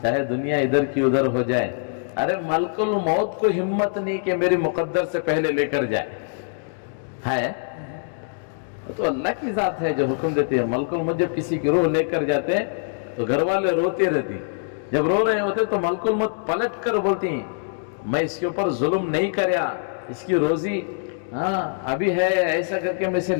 चाहे दुनिया इधर की उधर हो जाए। अरे मलकुल मौत को हिम्मत नहीं कि मेरी मुकद्दर से पहले लेकर जाए, है तो अल्लाह की जात है जो हुक्म देती है। मलकुल मौत जब किसी की रूह लेकर जाते हैं तो घर वाले रोते रहती, जब रो रहे होते तो मलकुल मौत पलट कर बोलती, मैं इसके ऊपर जुल्म नहीं करया, इसकी रोजी हाँ अभी है, ऐसा करके मैं इसे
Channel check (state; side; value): silent; right; digital silence